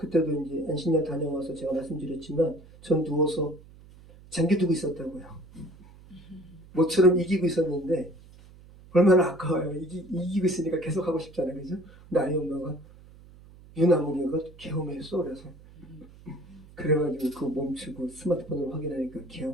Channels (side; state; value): right; noise; hum, 22 dB below the sound